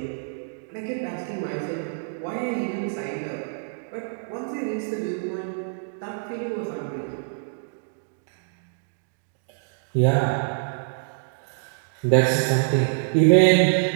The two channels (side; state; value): left; silent; digital silence